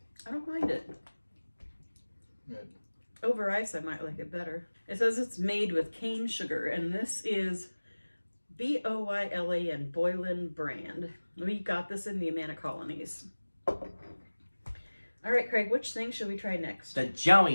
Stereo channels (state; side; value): inverted; both; correlation -1.00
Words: I don't mind it. Good. Over ice, I might like it better. It says it's made with cane sugar, and this is Boylan Boylan brand. We got this in the Amana colonies. All right, Craig, which thing should we try next? The